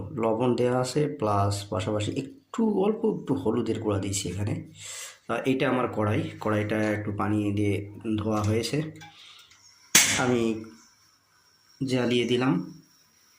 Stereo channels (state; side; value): identical; both; correlation 1.00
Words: লবণ দেওয়া আছে, প্লাস পাশাপাশি অল্প একটু হলুদের গুঁড়া দিয়েছি এখানে। এইটা আমার কড়াইটা একটু পানি দিয়ে ধোয়া হয়েছে, আমি জ্বালিয়ে দিলাম।